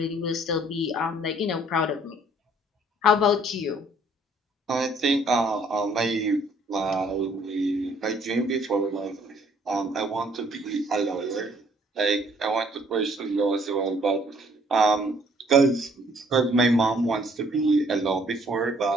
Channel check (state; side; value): normal; both; correlation 0.62